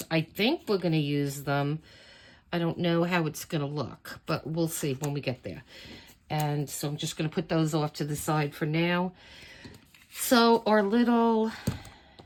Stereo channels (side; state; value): both; identical; correlation 1.00